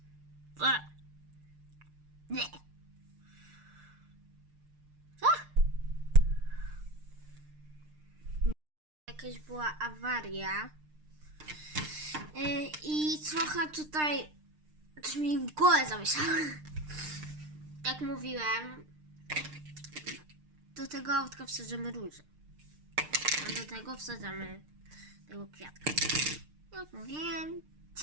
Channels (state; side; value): late; left; 6.6 ms